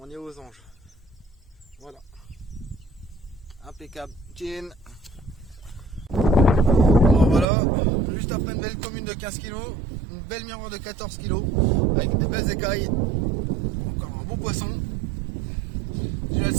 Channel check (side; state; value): left; drops out; at 7.5 s